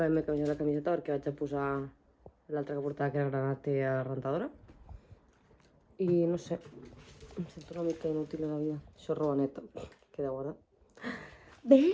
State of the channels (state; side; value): identical; both; correlation 1.00